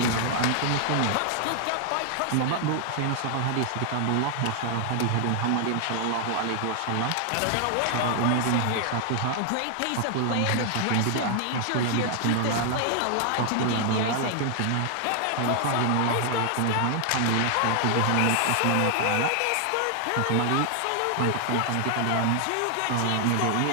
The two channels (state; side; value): different; both; correlation 0.00